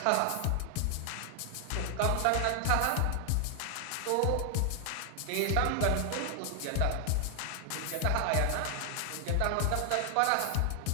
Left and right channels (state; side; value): different; both; correlation 0.00